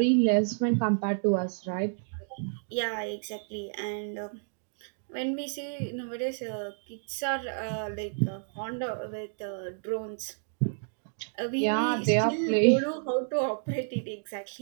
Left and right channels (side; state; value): left; silent; digital silence